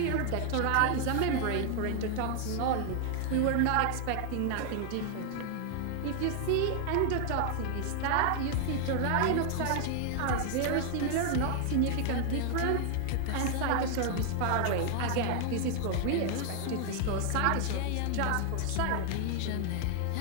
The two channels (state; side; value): different; both; correlation 0.00